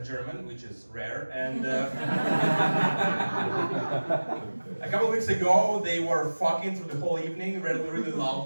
German, which is rare. And a couple of weeks ago they were fucking through the whole evening really, really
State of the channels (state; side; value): inverted; both; correlation -1.00